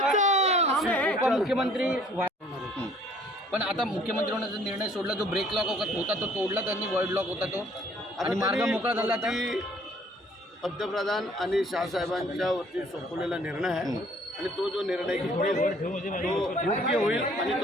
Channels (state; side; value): normal; both; correlation 0.58